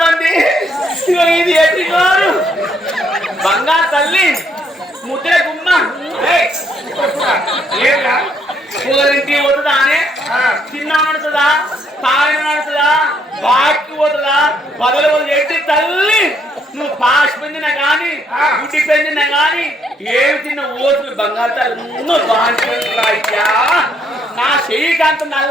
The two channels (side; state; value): both; normal; correlation 0.71